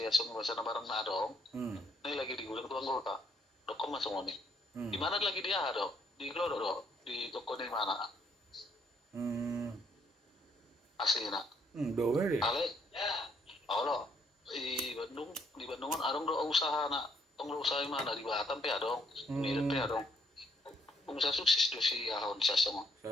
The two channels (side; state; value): both; normal; correlation 0.70